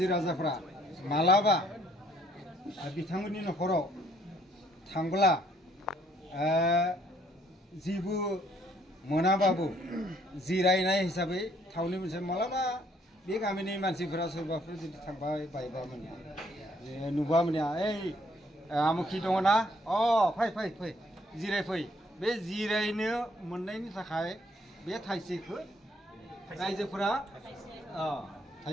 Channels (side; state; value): both; normal; correlation 0.66